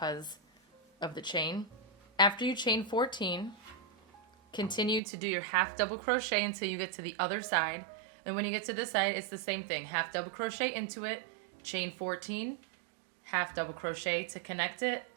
of the chain. After you chain 14, continue to do your half double crochet until you get to the other side. And when you get to this side, it's the same thing. Half double crochet into it, chain 14, half double crochet to connect it,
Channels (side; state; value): left; drops out; at 5.0 s